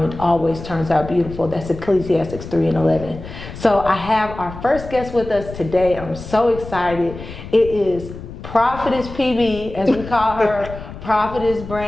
it always turns out beautiful. That's Ecclesiastes 3:11. So I have our first guest with us today. I'm so excited. It is Prophetess PB, as we call her, Prophetess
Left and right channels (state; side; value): noise; left; rumble, 12 dB below the sound